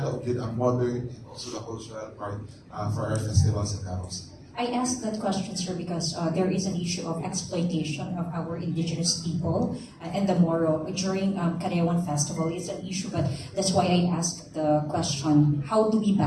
with ang modern and also the cultural part for our festivals sa Davao City. I asked that question, sir, because there is an issue of exploitation of our indigenous people and the Moro during Karayawan Festival. It's an issue, but that's why I asked the question, how do we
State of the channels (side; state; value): both; identical; correlation 1.00